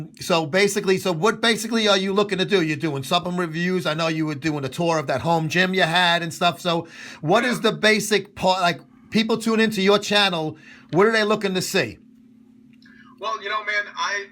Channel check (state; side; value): identical; both; correlation 1.00